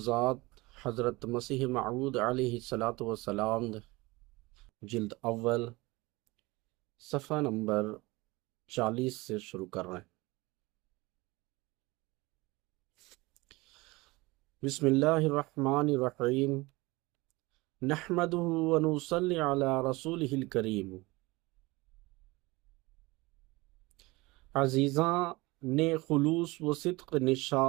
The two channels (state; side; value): quieter; left; 22.5 dB